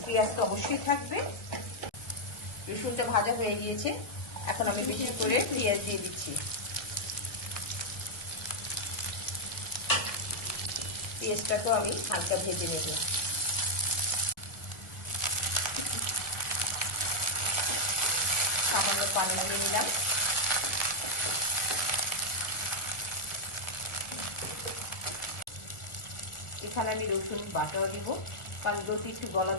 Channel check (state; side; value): late; right; 1.4 ms